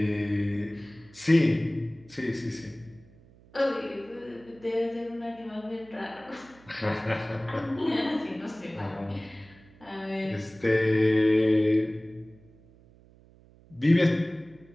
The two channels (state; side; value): noise; right; hum, 26 dB below the sound